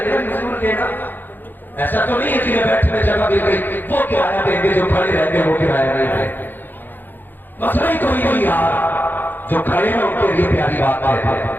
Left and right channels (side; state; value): right; late; 0.090 ms